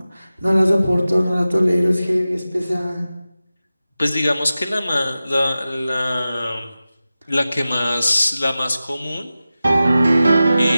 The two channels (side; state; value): both; inverted; correlation -0.94